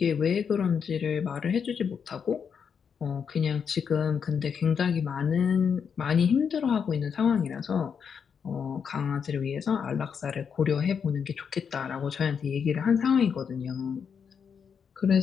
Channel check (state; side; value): quieter; right; 6.8 dB